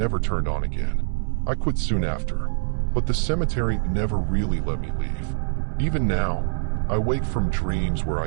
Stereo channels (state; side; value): silent; left; digital silence